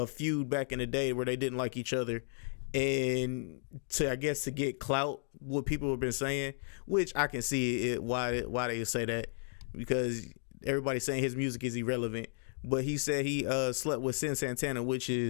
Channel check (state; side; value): silent; right; digital silence